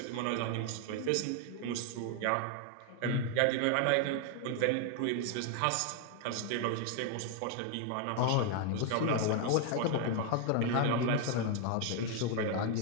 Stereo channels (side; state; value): both; different; correlation 0.00